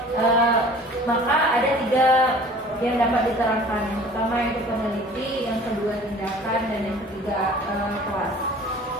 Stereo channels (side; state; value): both; normal; correlation 0.47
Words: Maka ada 3 yang dapat diterangkan. Yang pertama yaitu peneliti, yang kedua tindakan, dan yang ketiga kelas.